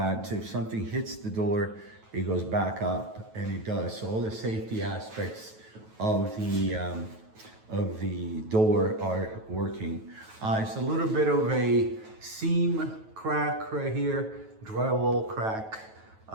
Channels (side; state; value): left; late; 9.2 ms